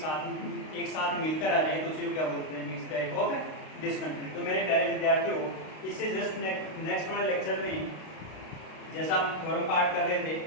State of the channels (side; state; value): right; late; 32 ms